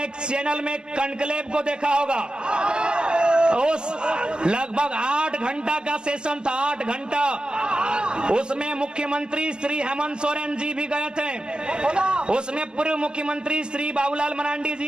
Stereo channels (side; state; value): left; late; 0.049 ms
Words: एक चैनल में कनक्लेव को देखा होगा। उस लगभग 8 घंटा का सेशन था, 8 घंटा। उसमें मुख्यमंत्री श्री हेमंत सोरेन जी भी गए थे, उसमें पूर्व मुख्यमंत्री श्री बाबूलाल मरांडी